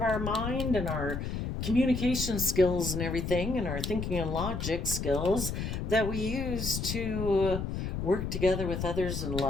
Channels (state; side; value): noise; left; rumble, 3 dB below the sound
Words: mind and our communication skills and everything and our thinking and logic skills that we use to work together with others in